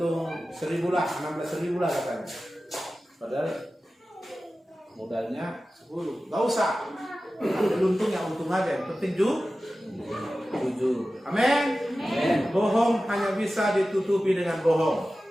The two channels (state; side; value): normal; both; correlation 0.95